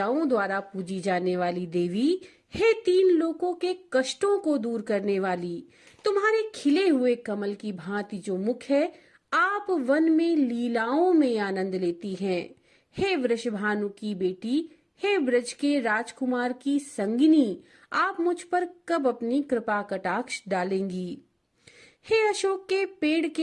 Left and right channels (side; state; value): both; identical; correlation 1.00